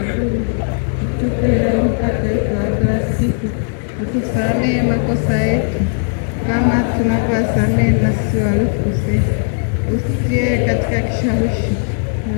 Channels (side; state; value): right; silent; digital silence